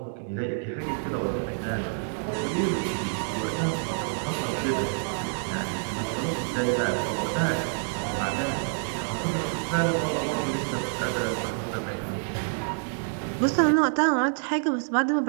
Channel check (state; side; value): silent; left; digital silence